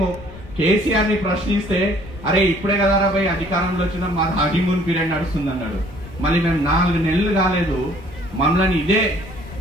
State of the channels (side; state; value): left; noise; rumble, 16 dB below the sound